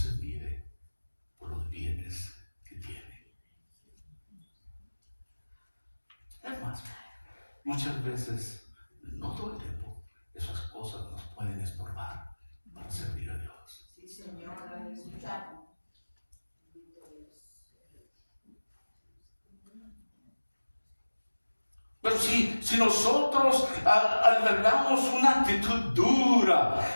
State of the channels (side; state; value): both; inverted; correlation -1.00